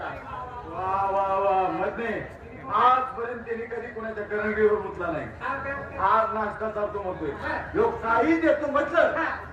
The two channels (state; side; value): identical; both; correlation 1.00